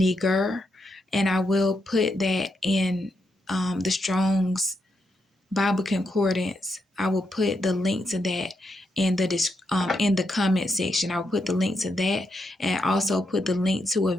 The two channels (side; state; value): both; normal; correlation 0.82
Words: and I will put that in the Strong's Bible Concordance. I will put the link to that in the comment section. I'll put the link to that, and also put the link to a